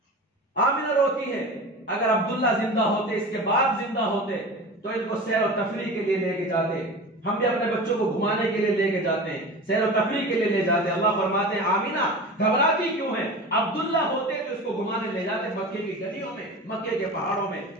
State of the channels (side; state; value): both; normal; correlation 0.32